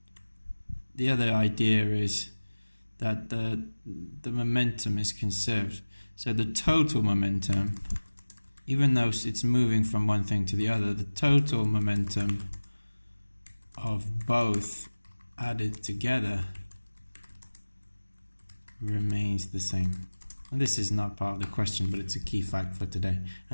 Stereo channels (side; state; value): both; inverted; correlation -1.00